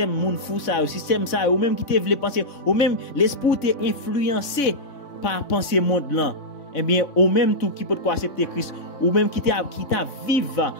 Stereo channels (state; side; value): late; right; 3.6 ms